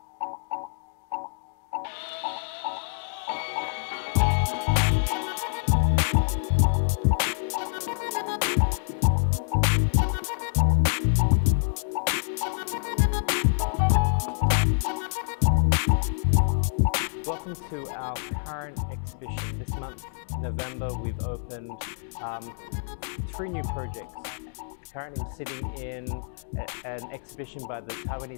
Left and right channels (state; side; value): silent; right; digital silence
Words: Welcome to our current exhibition. This month, November, we've opened 3 new projects. Currently I'm sitting in an exhibition by the